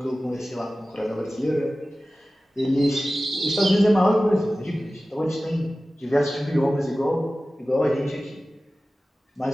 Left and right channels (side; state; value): both; normal; correlation 0.96